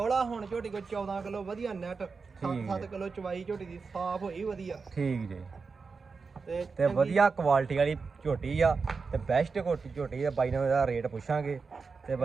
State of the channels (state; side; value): quieter; left; 4.8 dB